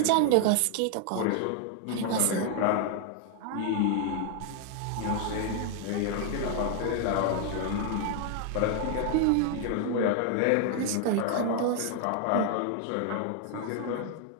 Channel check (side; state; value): both; different; correlation 0.00